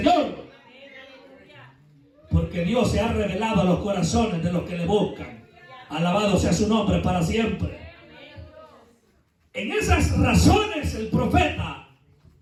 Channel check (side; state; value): both; identical; correlation 1.00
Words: porque Dios se ha revelado a los corazones de los que le buscan. Alabado sea su nombre para siempre. En esas razones el profeta